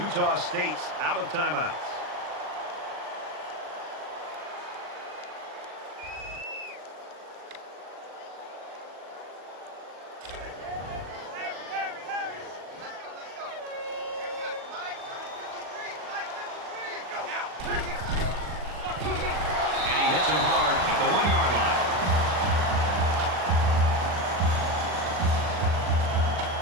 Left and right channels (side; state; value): left; late; 40 ms